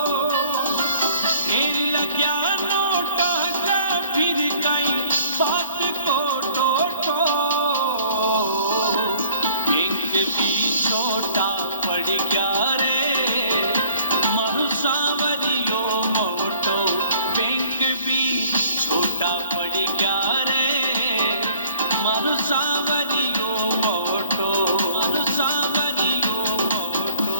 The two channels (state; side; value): inverted; both; correlation -0.53